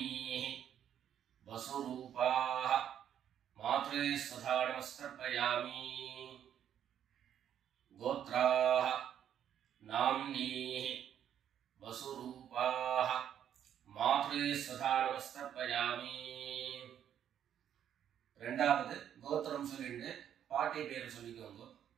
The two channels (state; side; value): quieter; left; 9.7 dB